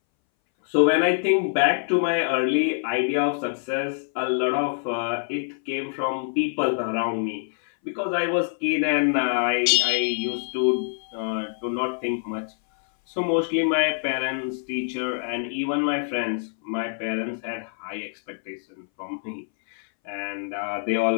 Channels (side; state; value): right; silent; 60 dB below the other